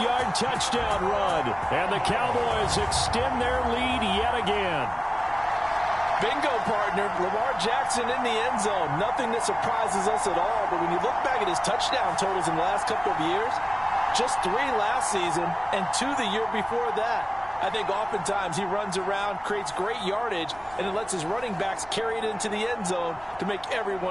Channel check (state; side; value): noise; right; rumble, 23 dB below the sound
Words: touchdown run, and the Cowboys extend their lead yet again. Bingo, partner. Lamar Jackson in the end zone. Nothing that surprises us at all. But when you look back at his touchdown totals in the last couple of years, just 3 last season and 2 the year before that. I think oftentimes he runs around, creates great yardage, and it lets his running backs carry it into the end zone to make